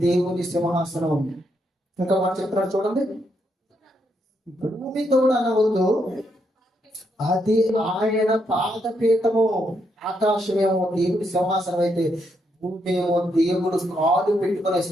దేవుని సింహాసనం. ఇంకా మనం చెప్తున్నాడు చూడండి, భూమి తోడనవద్దు, అది ఆయన పాదపీఠము. ఆకాశమేమో దేవుడి సింహాసనం అయితే భూమి ఏమో దేవుడు కాలు పెట్టుకునే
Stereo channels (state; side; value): normal; both; correlation 0.78